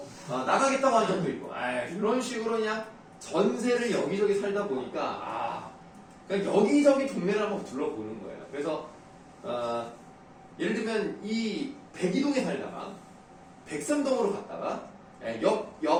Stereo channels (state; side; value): identical; both; correlation 1.00